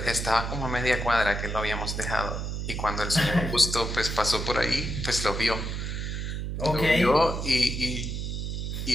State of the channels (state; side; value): noise; right; hum, 4 dB below the sound